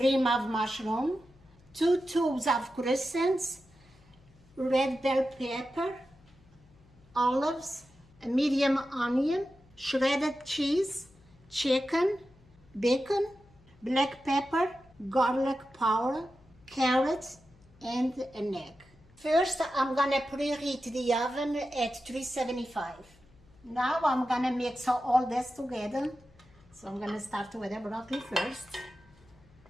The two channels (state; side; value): noise; left; hum, 28 dB below the sound